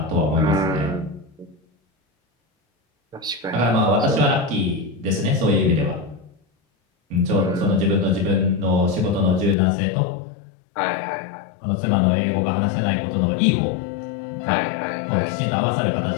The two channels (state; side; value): drops out; right; at 9.6 s